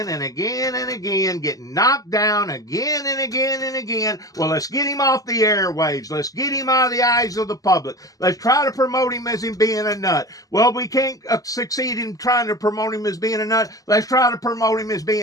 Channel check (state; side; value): late; right; 0.17 ms